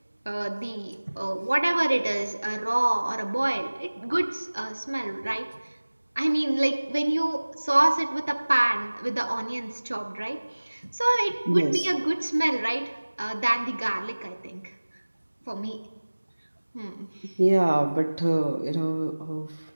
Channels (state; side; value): inverted; both; correlation -1.00